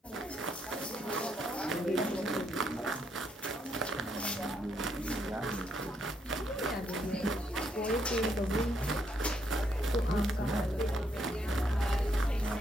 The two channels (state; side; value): normal; both; correlation 0.75